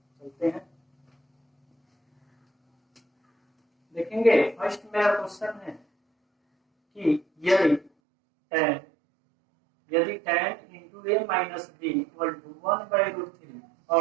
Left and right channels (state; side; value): drops out; left; at 7.9 s